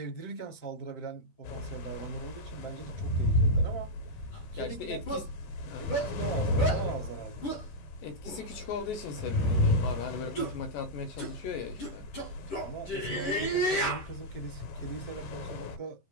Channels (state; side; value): late; right; 10 ms